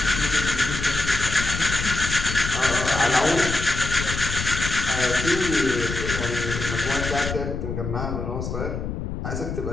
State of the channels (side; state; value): left; noise; rumble, 5 dB below the sound